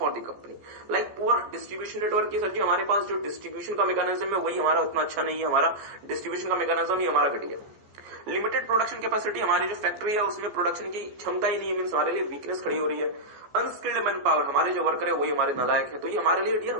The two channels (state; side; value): late; left; 14 ms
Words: the company, like poor distribution network। की सर जी हमारे पास जो distribution का मैकेनिज्म है वही हमारा उतना अच्छा नहीं है, हमारा डिस्ट्रीब्यूशन का मैकेनिज्म ही हमारा घटिया। लिमिटेड प्रोडक्शन कैपेसिटी, हमारी जो फैक्ट्री है उसमें प्रोडक्शन की क्षमता ही नहीं है, मीन्स हमारे लिए वीकनेस खड़ी हो रही है। अनस्किल्ड मैन पावर, हमारे जो वर्कर है वही हमारे नालायक है, तो ये हमारे लिए डियर